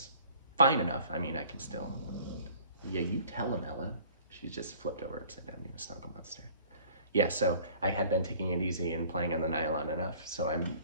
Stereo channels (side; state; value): both; inverted; correlation -0.52